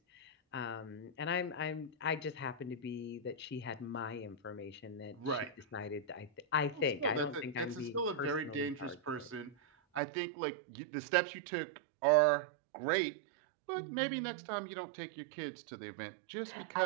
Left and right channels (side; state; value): left; drops out; at 10.0 s